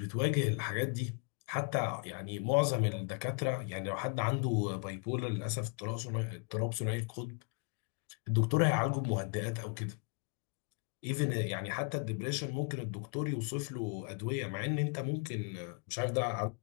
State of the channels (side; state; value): right; quieter; 35.8 dB